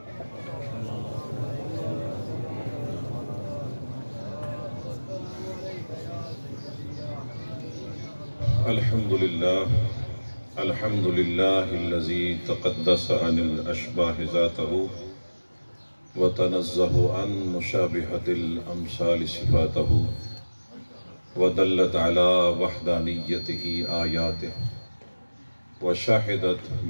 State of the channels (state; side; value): inverted; both; correlation -1.00